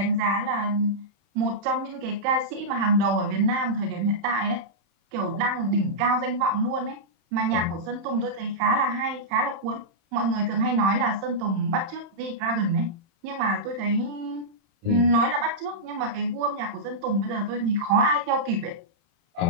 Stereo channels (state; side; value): late; left; 31 ms